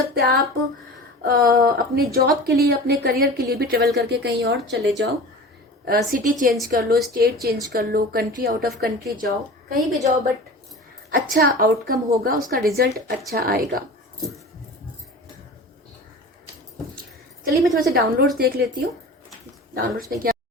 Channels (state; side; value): normal; both; correlation 0.36